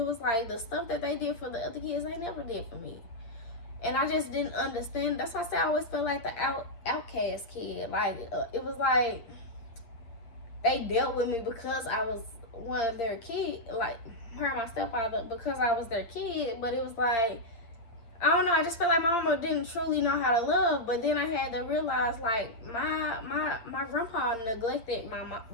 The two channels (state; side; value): late; right; 9.0 ms